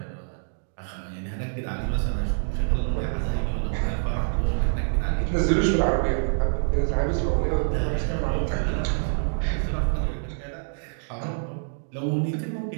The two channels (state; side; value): silent; left; digital silence